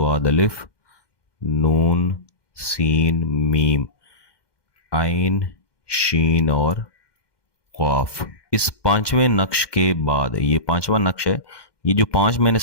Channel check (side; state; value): right; late; 2.1 ms